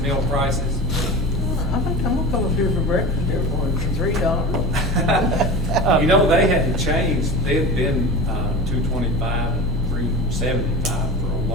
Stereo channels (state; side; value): normal; both; correlation 0.31